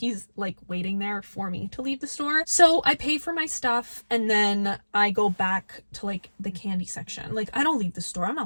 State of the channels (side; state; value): both; inverted; correlation -1.00